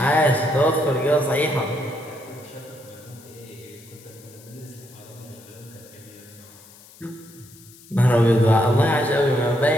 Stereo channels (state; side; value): noise; left; hiss, 23 dB below the sound